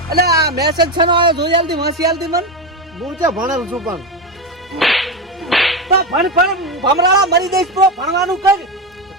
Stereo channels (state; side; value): normal; both; correlation 0.14